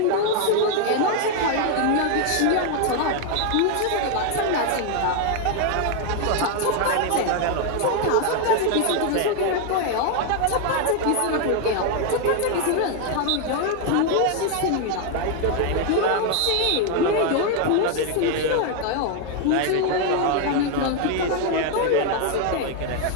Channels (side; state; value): both; different; correlation 0.01